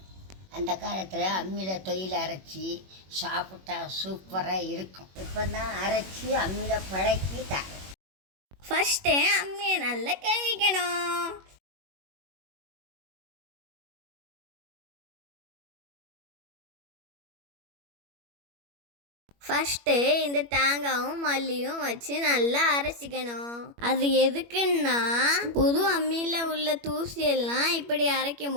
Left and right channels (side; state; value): left; late; 21 ms